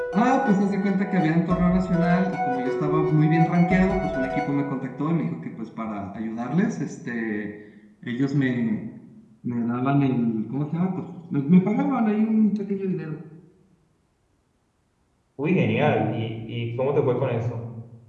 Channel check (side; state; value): both; identical; correlation 1.00